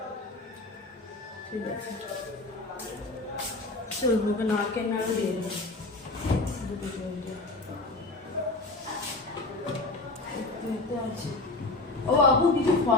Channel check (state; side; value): quieter; right; 3.1 dB